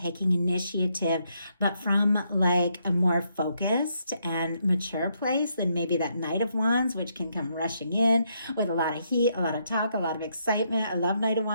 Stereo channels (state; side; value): inverted; both; correlation -0.76